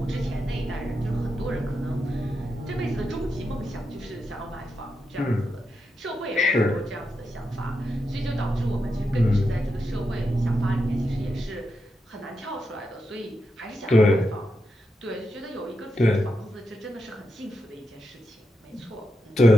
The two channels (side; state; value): both; normal; correlation 0.86